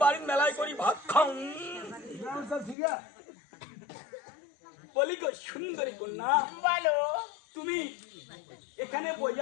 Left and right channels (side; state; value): right; drops out; at 2.8 s